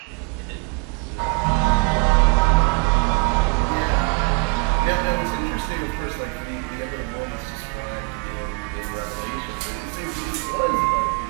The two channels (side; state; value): left; quieter; 35.6 dB